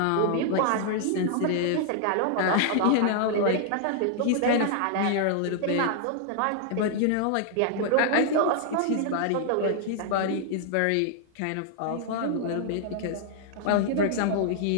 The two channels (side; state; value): both; different; correlation 0.00